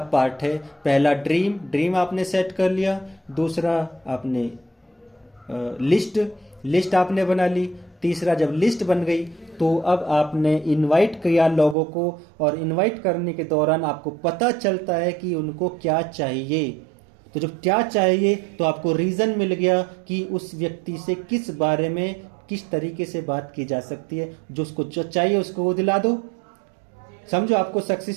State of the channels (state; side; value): drops out; left; at 11.8 s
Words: पार्ट है। पहला ड्रीम आपने सेट कर लिया, दूसरा आपने लिस्ट आपने बना ली, तीसरा जब लिस्ट बन गई तो अब आपने इनवाइट किया लोगों को, और इनवाइट करने के दौरान आपको पता चलता है कि उनको क्या चाहिए। तो जब क्या चाहिए तो आपको रीज़न मिल गया कि उस व्यक्ति से किस बारे में किस तरीके से बात की जा सकती है। जो उसको जो चाहिए उसको वो दिला दो। समझो आपको